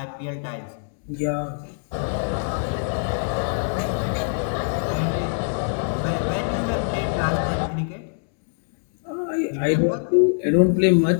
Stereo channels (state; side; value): silent; right; 63 dB below the other